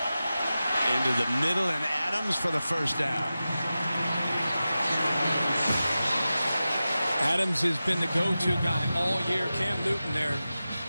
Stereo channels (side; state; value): both; inverted; correlation -0.94